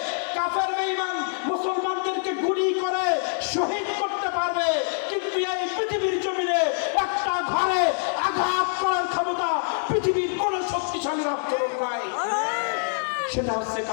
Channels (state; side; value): silent; right; digital silence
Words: কাফের বেঈমান মুসলমানদেরকে গুলি করে শহীদ করতে পারবে, কিন্তু এই পৃথিবীর জমিনে একটা ঘরে আঘাত করার ক্ষমতা পৃথিবীর কোন শক্তিশালী রাষ্ট্রের নাই। সেটা হচ্ছে